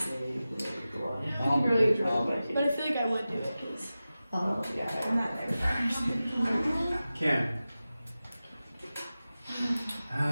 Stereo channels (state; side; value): inverted; both; correlation -0.95